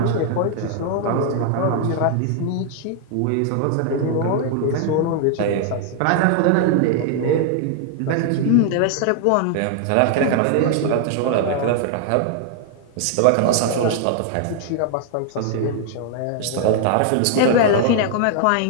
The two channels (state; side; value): different; both; correlation 0.00